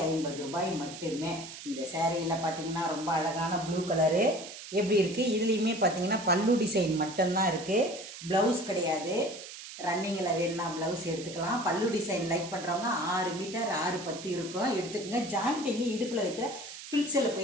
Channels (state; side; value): noise; right; hiss, 12 dB below the sound